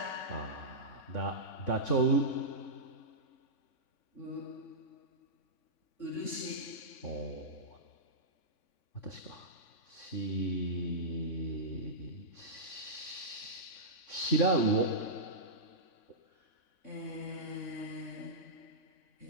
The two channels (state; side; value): late; right; 3.6 ms